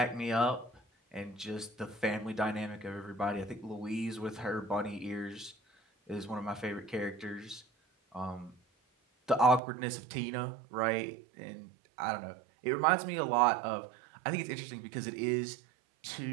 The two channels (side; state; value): left; drops out; at 9.6 s